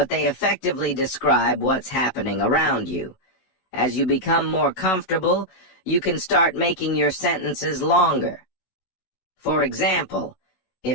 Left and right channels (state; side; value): late; right; 16 ms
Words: they effectively describe what's happening around you. As you become more comfortable, you can start making your sentences longer. For example,